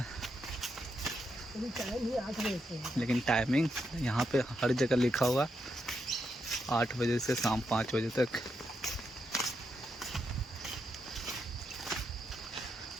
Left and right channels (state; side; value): normal; both; correlation 0.82